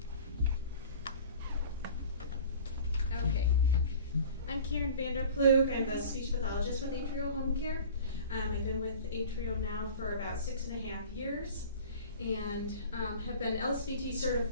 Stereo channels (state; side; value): inverted; both; correlation -0.42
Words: Okay. I'm Karen Vanderploeg. I'm the speech pathologist with Atrial Home Care. I've been with Atrial now for about 6.5 years and have been LSVT